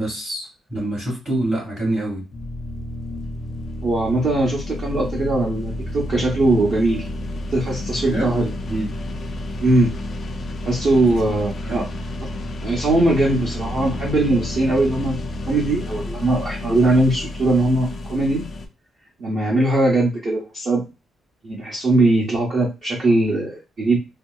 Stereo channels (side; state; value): both; normal; correlation 0.79